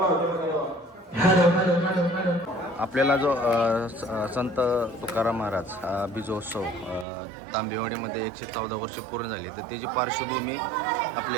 आपल्याला जो संत तुकाराम महाराज बीजोत्सव तांबेवाडीमध्ये 114 वर्ष पूर्ण झाली, तर त्याची पार्श्वभूमी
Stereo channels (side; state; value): left; drops out; at 7.1 s